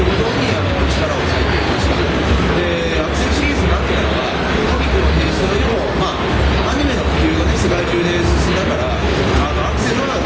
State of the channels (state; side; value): identical; both; correlation 1.00